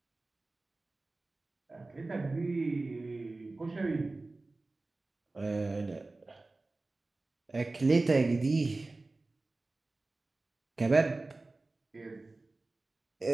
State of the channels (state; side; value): quieter; left; 3.2 dB